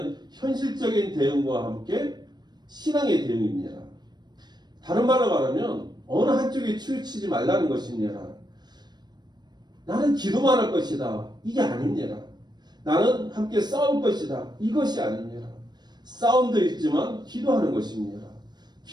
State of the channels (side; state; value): left; late; 0.21 ms